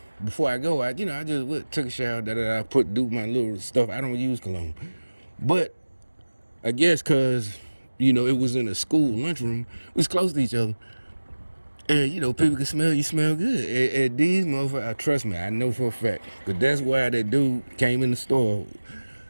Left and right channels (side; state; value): both; inverted; correlation -1.00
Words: before I go, I just took a shower. Do my little stuff. I don't use cologne, but I guess because. It was in a school lunchroom. We was close to each other. And, people can smell you smell good. And these motherfuckers, trust me, I know for a fact. Because that's why that dude came in the store,